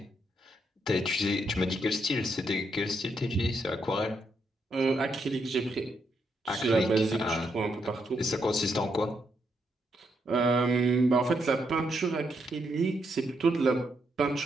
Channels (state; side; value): normal; both; correlation 0.79